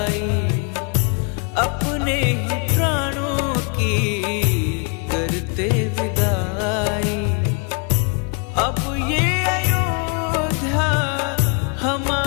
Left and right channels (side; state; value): right; quieter; 36.0 dB